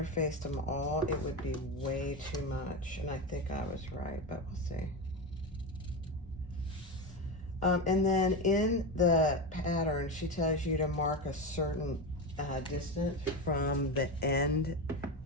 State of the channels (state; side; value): normal; both; correlation 0.18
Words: them all, it would be way too much. And I think I was right, but we'll see. And then in the pattern, she tells you to mark a certain distance from the end,